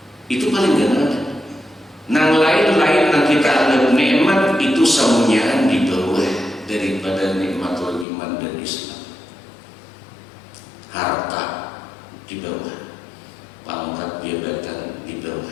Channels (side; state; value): right; drops out; at 8.1 s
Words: Itu paling gana. Nang lain-lain yang kita anggap nikmat itu semuanya di bawah daripada nikmatul iman dan Islam. Harta di bawah, pangkat jabatan di